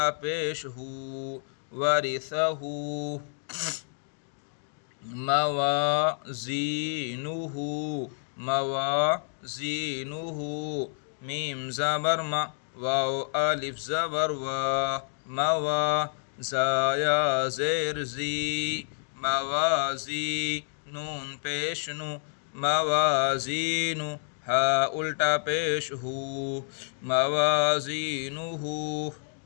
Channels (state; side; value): silent; right; digital silence